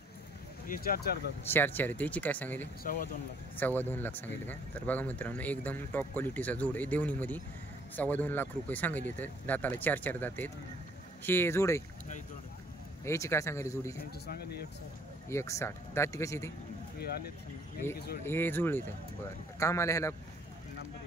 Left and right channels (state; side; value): normal; both; correlation 0.62